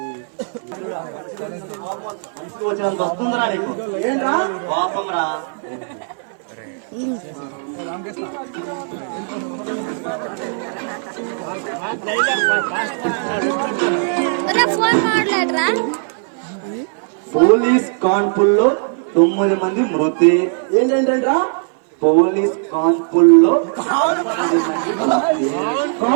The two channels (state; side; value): silent; left; 60 dB below the other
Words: మనిషికి వచ్చేంత వస్తుందిరా నీకు. ఏంట్రా కోపం రా? పోలీస్ కాన్పుల్లో 9 మంది మృతి. ఏంటంటరా? పోలీస్ కాన్పుల్లో